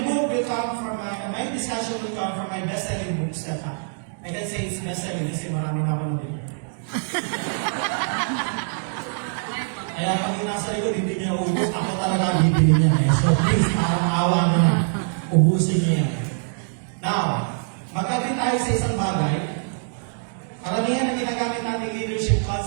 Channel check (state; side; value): silent; left; digital silence